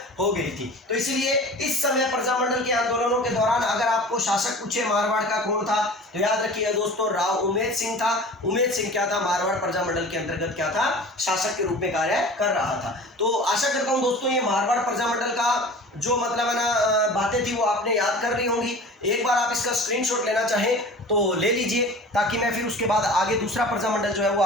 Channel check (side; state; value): both; normal; correlation 0.40